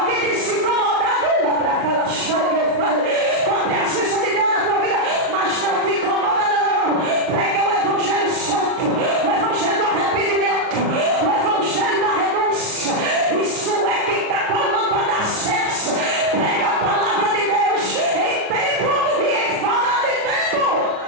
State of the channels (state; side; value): late; left; 38 ms